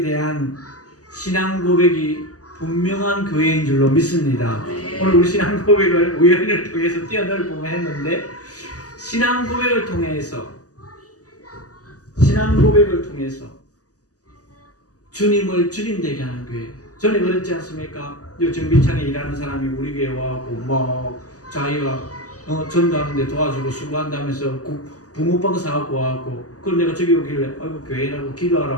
대한 신앙 고백이 분명한 교회인 줄로 믿습니다. 오늘 우리 신앙 고백을 우연을 통해서 뛰어넘을 보면 했는데, 신앙 고백을 통해서 주님을 주님 되게 하는 교회. 전에 그랬지 않습니까? 정비창에 일하는 사람이 우리 교회 와갖고 막 자기가 전도하는데 도와주고 수고한다면서 붕어빵 사갖고 와갖고, 그럼 내가 저기 오길래 아이고 교회라고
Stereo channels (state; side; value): late; right; 0.67 ms